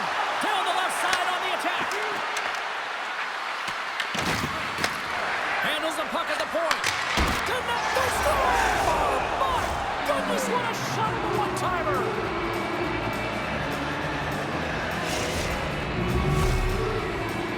Down the left side on the attack. Handles the puck at the point. Connect the score! Oh, my goodness, what a shot of a one-timer.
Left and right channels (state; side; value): identical; both; correlation 1.00